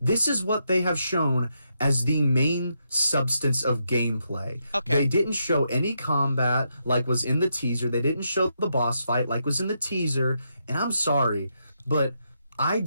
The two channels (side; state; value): both; inverted; correlation -0.81